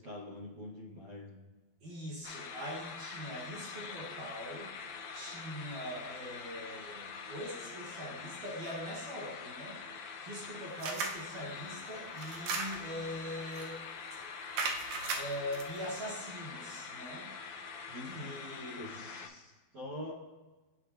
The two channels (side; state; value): left; late; 12 ms